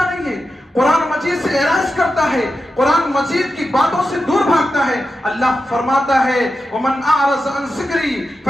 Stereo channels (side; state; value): both; normal; correlation 0.90